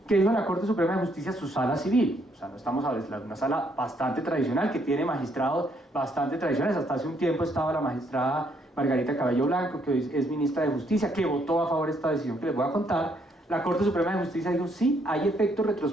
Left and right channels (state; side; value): normal; both; correlation 0.71